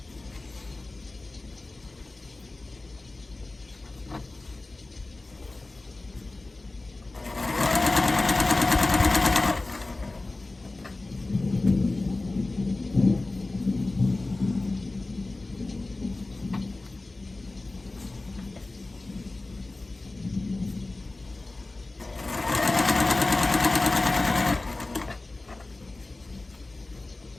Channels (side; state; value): right; quieter; 3.1 dB